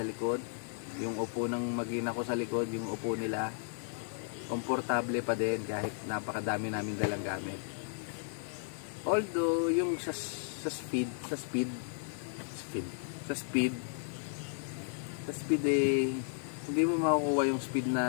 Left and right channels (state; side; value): silent; right; digital silence